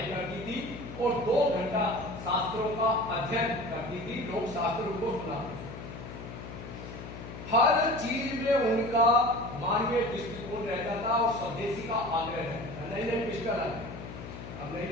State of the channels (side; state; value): left; noise; hum, 11 dB below the sound